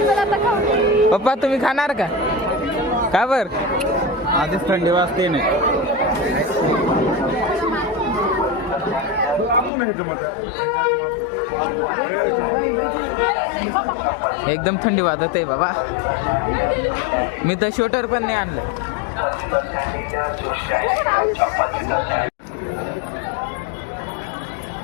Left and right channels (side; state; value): right; drops out; at 9.7 s